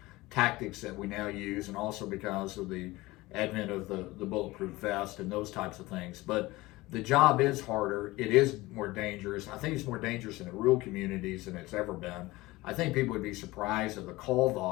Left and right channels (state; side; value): quieter; right; 20.0 dB